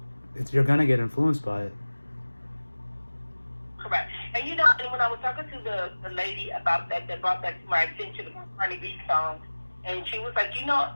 going to get influenced by it. Correct. And and when I was talking to the lady about that brought that to my attention, about Cardi B song, and she was like,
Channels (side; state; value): both; inverted; correlation -1.00